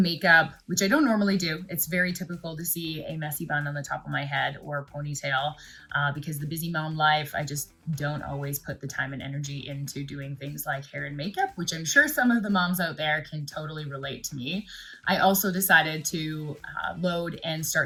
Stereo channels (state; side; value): identical; both; correlation 1.00